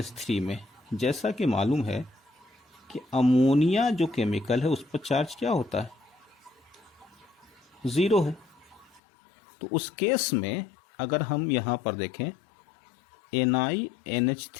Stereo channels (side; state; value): right; drops out; at 9.0 s